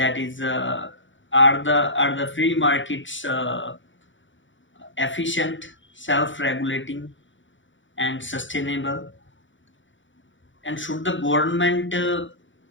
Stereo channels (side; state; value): right; late; 0.55 ms